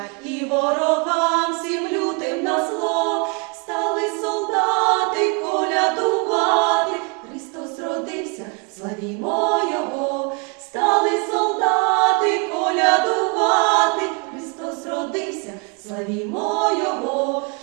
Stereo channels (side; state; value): left; quieter; 34.6 dB